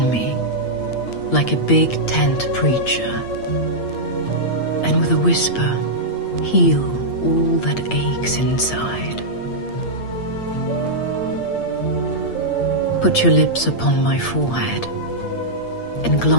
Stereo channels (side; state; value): right; late; 8.6 ms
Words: me like a big tent preacher, and with a whisper, heal all that aches inside. Put your lips upon my forehead and